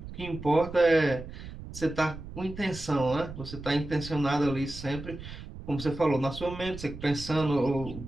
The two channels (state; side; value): noise; right; rumble, 12 dB below the sound